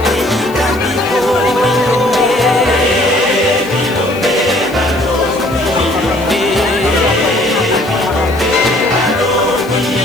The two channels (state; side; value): noise; left; hiss, 21 dB below the sound